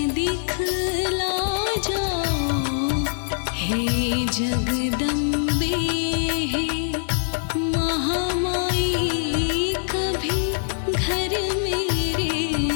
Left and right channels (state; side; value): silent; right; digital silence